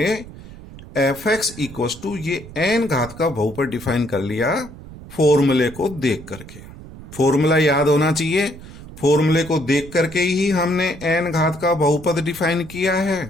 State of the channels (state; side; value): noise; right; rumble, 16 dB below the sound